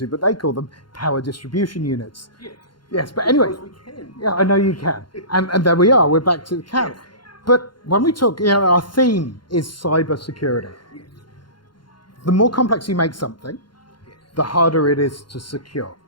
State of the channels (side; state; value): right; late; 0.72 ms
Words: but they call them power distribution units. Yes. Yes, but anyway. Because we can. Yeah, I know you can. And there we are, we're back to the can. Yes. But when we talk, our theme is cyber security. Yes. The more complex you make something, the harder it is to secure.